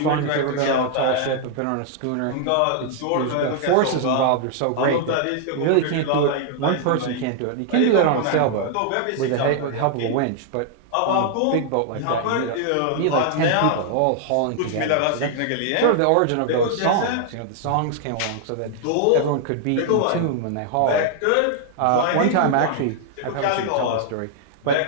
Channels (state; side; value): different; both; correlation 0.00